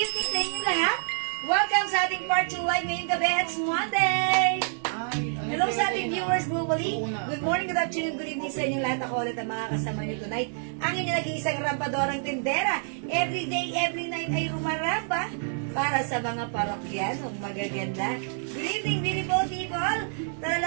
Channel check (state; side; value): silent; left; 60 dB below the other